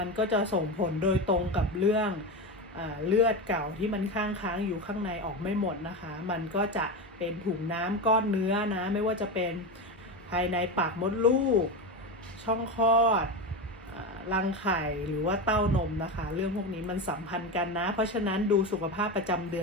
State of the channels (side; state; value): both; normal; correlation 0.19